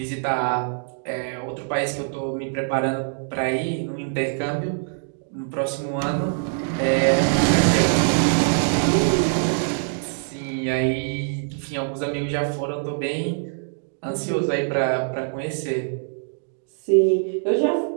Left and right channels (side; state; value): left; silent; digital silence